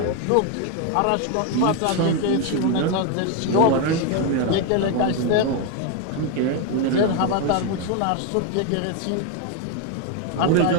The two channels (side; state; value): both; different; correlation 0.01